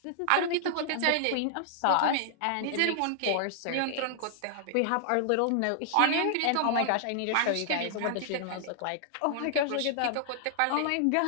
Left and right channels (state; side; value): different; both; correlation -0.01